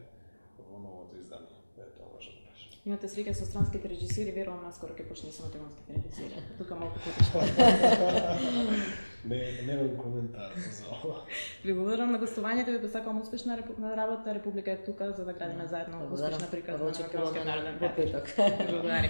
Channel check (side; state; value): both; inverted; correlation -1.00